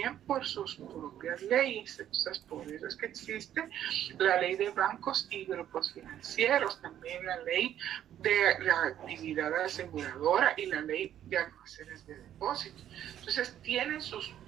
por sus propias leyes. Entonces, por eso es que existe la ley de bancos y grupos financieros, también la ley de la actividad aseguradora y la ley de almacenes de depósito. Entonces tienen sus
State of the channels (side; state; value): left; quieter; 10.9 dB